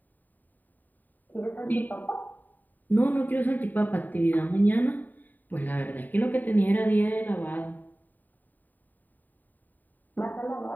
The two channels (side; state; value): right; late; 0.087 ms